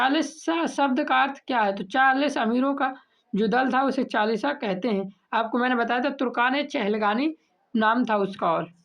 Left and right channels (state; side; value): identical; both; correlation 1.00